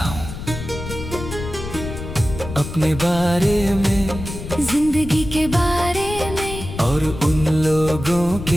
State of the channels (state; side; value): noise; left; rumble, 9 dB below the sound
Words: हूँ अपने बारे में, जिंदगी के बारे में, और उन लोगों